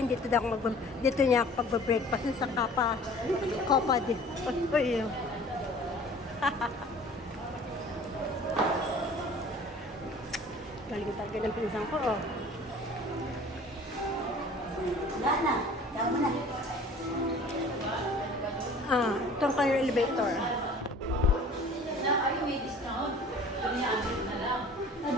dito daw ako dito niya ako pagbe-breakfast sa Kapa di. Oy. Galing talaga ng pinsang ko, oh. Wala na. Tama mo na. Ah, itong kayo elevator. Ay, may discount. Piniamit na lang.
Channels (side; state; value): both; normal; correlation 0.47